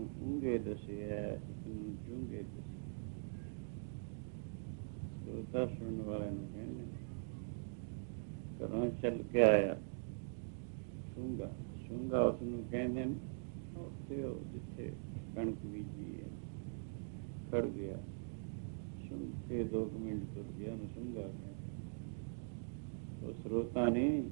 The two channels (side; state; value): left; silent; digital silence